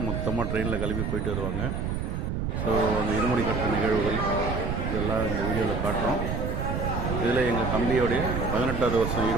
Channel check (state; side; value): noise; right; rumble, 2 dB below the sound